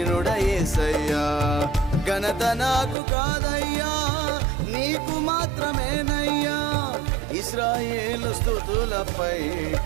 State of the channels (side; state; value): left; drops out; at 3.0 s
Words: యేసయ్యా. ఘనత నాకు కాదయ్యా నీకు మాత్రమేనయ్యా. ఇశ్రాయేలు స్తుతులపై